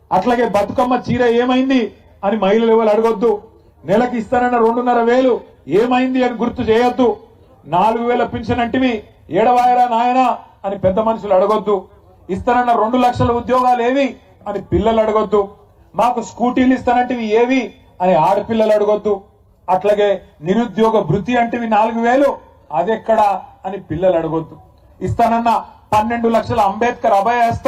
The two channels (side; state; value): both; identical; correlation 1.00